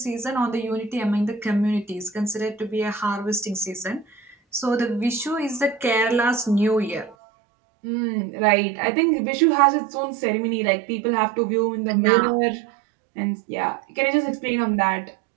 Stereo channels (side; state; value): left; drops out; at 7.2 s